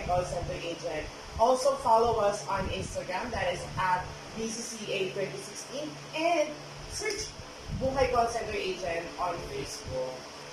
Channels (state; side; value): identical; both; correlation 1.00